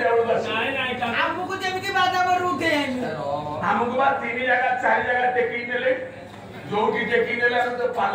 বেলা আসি नहीं नहीं ଆମକୁ ଯେମିତି ବାଧା କରୁ ଉଠେ ଆମକୁ ବା 3 ଜାଗା 4 ଜାଗା टेकी ନେଲେ ଯୋଉଠି टेकी ନେଲେ ଆମେ ତ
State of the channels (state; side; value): identical; both; correlation 1.00